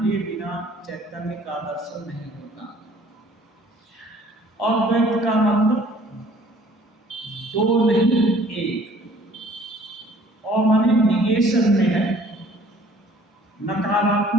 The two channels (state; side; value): normal; both; correlation 0.55